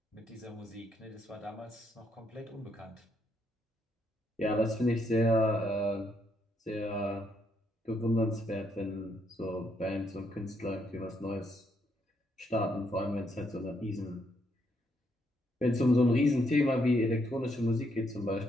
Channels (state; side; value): normal; both; correlation 0.75